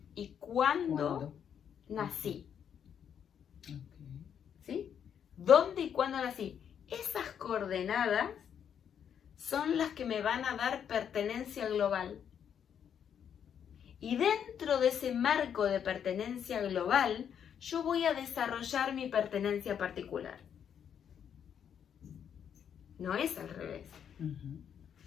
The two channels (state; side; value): quieter; right; 8.4 dB